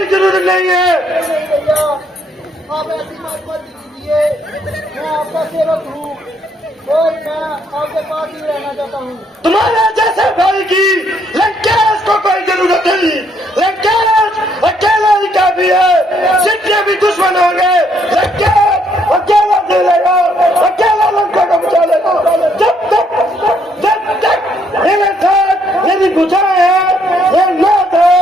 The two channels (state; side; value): normal; both; correlation 0.70